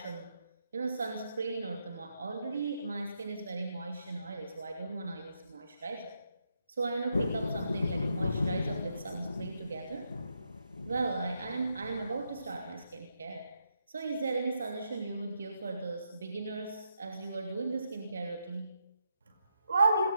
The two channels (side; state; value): both; inverted; correlation -0.81